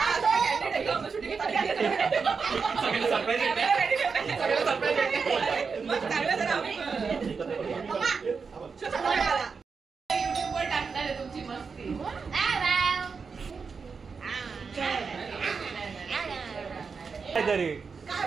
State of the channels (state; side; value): quieter; left; 5.3 dB